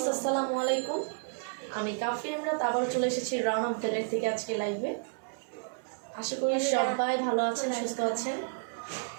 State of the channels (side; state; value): left; silent; 57 dB below the other